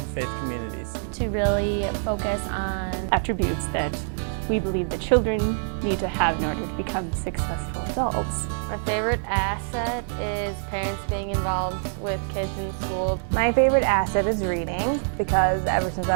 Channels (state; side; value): silent; left; digital silence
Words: faith communities. To really focus on attributes that we believe that children need to have in order to become successful adults. My favorite asset is parents being involved with kids in school. My favorite asset is reading, because ever since